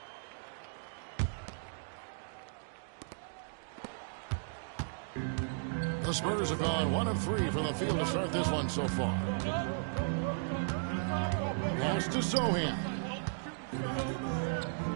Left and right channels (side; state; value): left; silent; digital silence